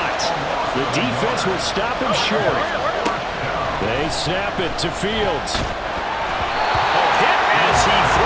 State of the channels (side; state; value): both; identical; correlation 1.00